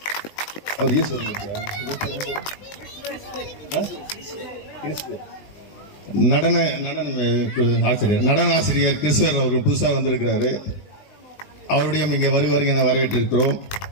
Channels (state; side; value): late; right; 19 ms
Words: நடன ஆசிரியர் கிறிஸ்துவர் அவர்கள் புதுசாக வந்திருக்கிறாரு. அவருடைய இங்கே வருவார்கள் என வரவேற்றிருக்கிறோம்.